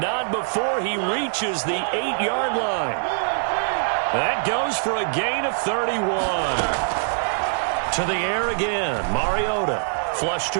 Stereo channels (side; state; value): left; silent; 63 dB below the other